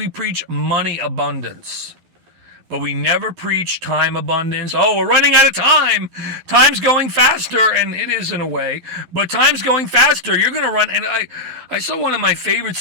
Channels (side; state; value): left; late; 12 ms